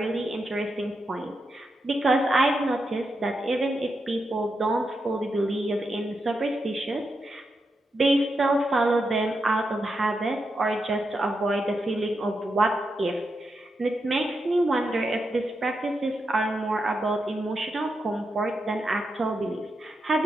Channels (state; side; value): normal; both; correlation 0.85